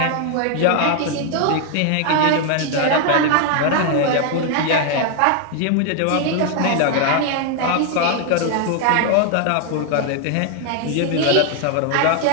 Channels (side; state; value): both; different; correlation 0.00